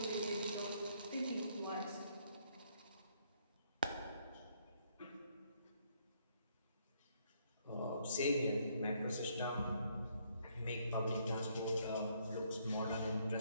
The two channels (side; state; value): both; inverted; correlation -0.70